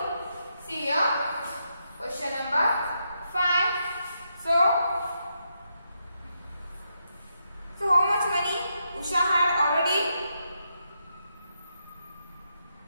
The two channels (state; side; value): inverted; both; correlation -0.82